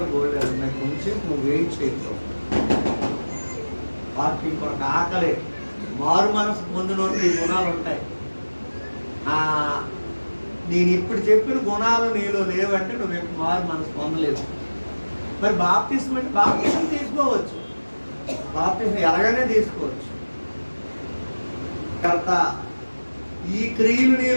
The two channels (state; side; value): inverted; both; correlation -1.00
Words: బోల్డ్ ఉన్నాయి, కొంచెం నువ్వు వెయిట్ చేయొచ్చు. వాక్యం కొరకు ఆకలి, మారు మనసు పొందిన ఈ గుణాలు ఉంటాయి. నేను ఇప్పుడు చెప్పిన గుణాలు నీలో లేవంటే నువ్వు మారు మనసు పొందలేవు. మరి బాప్తిస్మం అంటే బాప్తిస్మం తీసుకోవచ్చు, బాప్తిస్మం ఎలాగనే తీసుకోవచ్చు. కర్త ఈ క్రియలు